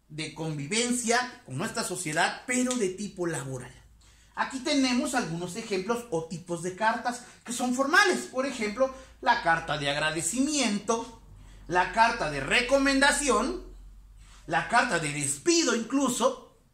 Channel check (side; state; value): both; identical; correlation 1.00